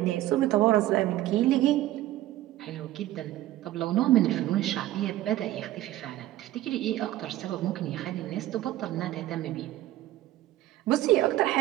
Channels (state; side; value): quieter; left; 14.7 dB